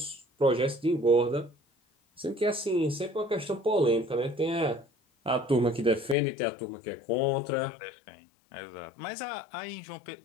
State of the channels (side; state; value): right; drops out; at 6.2 s